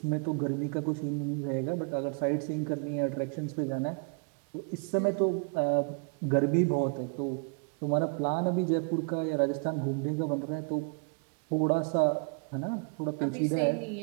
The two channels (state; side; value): quieter; left; 37.8 dB